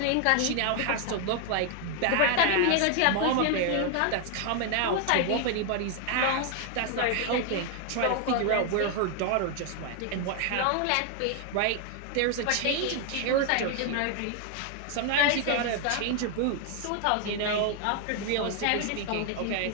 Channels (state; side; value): different; both; correlation 0.00